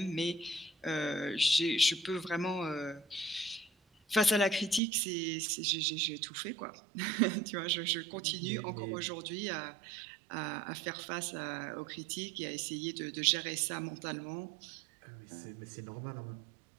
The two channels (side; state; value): left; drops out; at 4.8 s